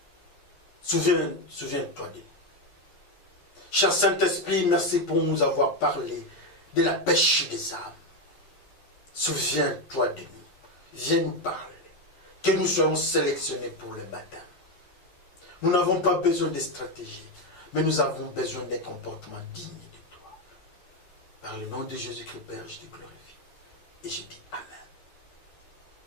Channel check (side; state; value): right; late; 11 ms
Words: Souviens-toi de nous. Cher Saint-Esprit, merci pour nous avoir parlé de la pêche des âmes. Souviens-toi de nous. Viens nous parler. Que nous soyons sélectionnés pour le baptême. Nous n'avons pas besoin de stratégie, mais nous avons besoin d'un comportement digne de toi. Par le nom de Jésus-Christ, Père, je te glorifie. Et je dis Amen.